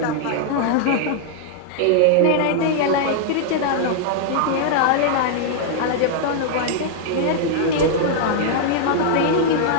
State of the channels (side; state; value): both; different; correlation -0.01